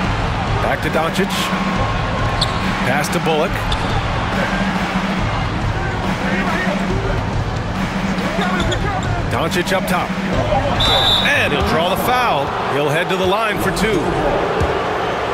Back to Doncic. Pass to Bullock. Doncic up top. And he'll draw the foul. He'll head to the line for 2.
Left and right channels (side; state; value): both; identical; correlation 1.00